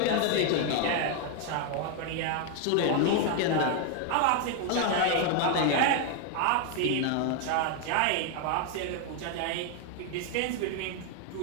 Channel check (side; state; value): both; different; correlation 0.00